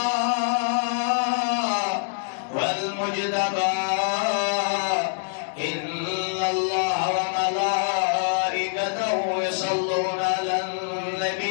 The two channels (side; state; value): right; silent; 62 dB below the other